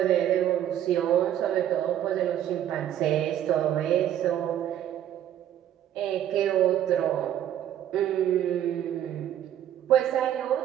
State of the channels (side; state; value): left; quieter; 11.1 dB